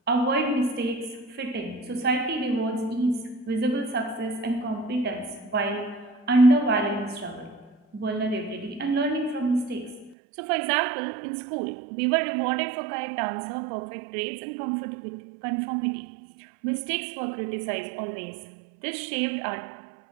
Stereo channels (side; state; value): left; drops out; at 10.2 s